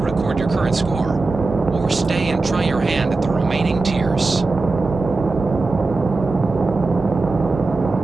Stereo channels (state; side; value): quieter; left; 3.6 dB